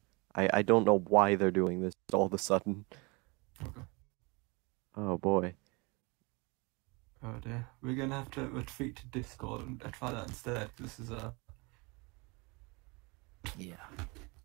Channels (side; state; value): left; quieter; 28.0 dB